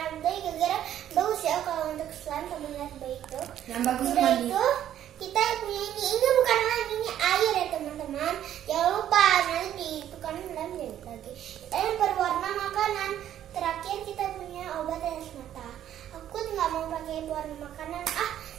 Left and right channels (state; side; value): quieter; left; 11.1 dB